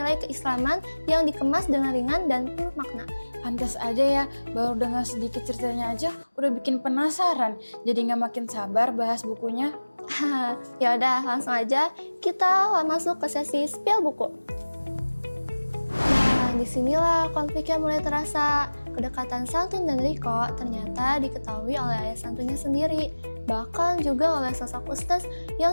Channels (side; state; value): both; inverted; correlation -1.00